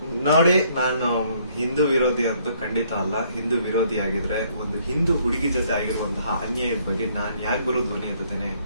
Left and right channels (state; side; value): inverted; both; correlation -0.66